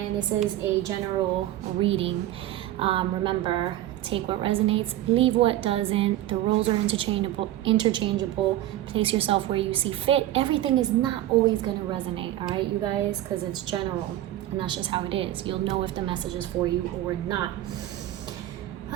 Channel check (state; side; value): quieter; left; 13.8 dB